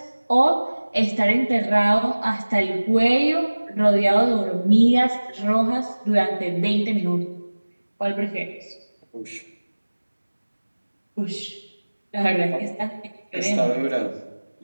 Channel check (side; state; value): both; inverted; correlation -1.00